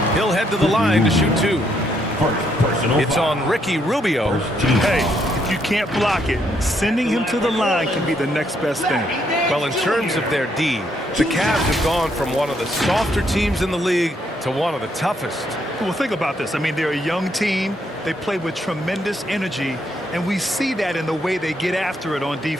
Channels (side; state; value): both; normal; correlation 0.74